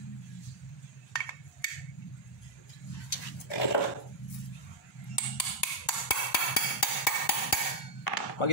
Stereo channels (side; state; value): both; normal; correlation -0.03